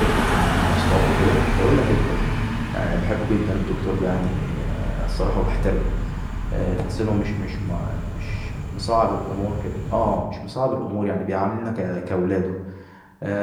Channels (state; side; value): identical; both; correlation 1.00